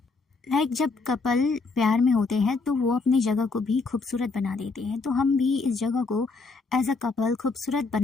जब कपल प्यार में होते हैं तो वो अपनी जगह को भी खूबसूरत बना देते हैं, तो हम भी इस जगह को एज अ कपल खूबसूरत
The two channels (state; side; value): quieter; right; 4.0 dB